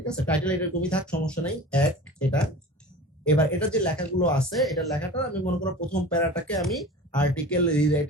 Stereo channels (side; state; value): both; normal; correlation 0.37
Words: আছে, টাইটেল এরকমই থাক, সমস্যা নাই, এক এটা। এবার এটা যে লেখাগুলো আছে, এটা লেখাটা আমি মনে করো প্রথম প্যারাটাকে আমি আর্টিকেল